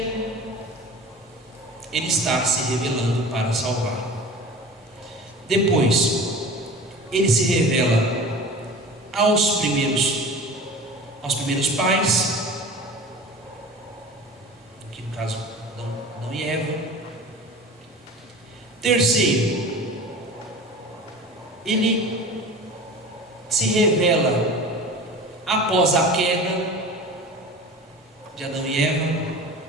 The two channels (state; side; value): normal; both; correlation 0.38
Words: Ele está se revelando para salvar. Depois, Ele se revela aos primeiros pais, aqui no caso Adão e Eva. Terceiro, Ele se revela após a queda de Adão e Eva,